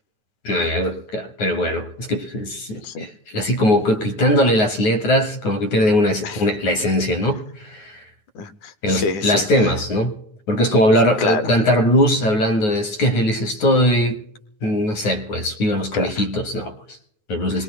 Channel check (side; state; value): right; late; 9.5 ms